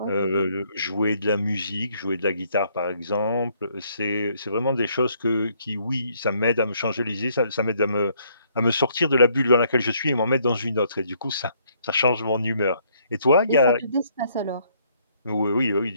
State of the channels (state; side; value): inverted; both; correlation -0.68